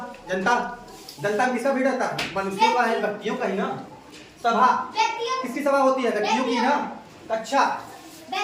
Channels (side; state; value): both; identical; correlation 1.00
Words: जनता, जनता में किसका भीड़ रहता है? मनुष्यों का है, व्यक्तियों का ही ना। सभा, किसकी सभा होती है? व्यक्तियों की ना। कक्षा,